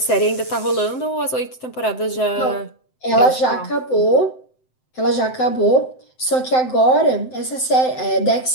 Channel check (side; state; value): right; late; 7.8 ms